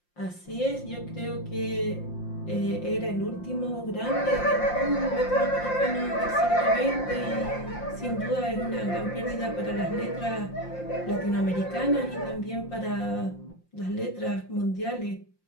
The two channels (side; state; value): right; late; 5.7 ms